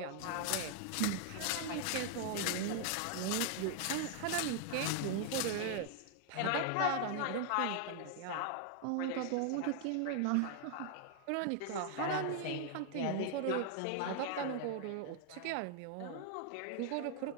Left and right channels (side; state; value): both; different; correlation 0.00